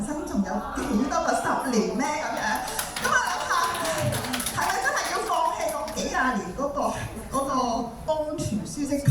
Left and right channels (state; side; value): identical; both; correlation 1.00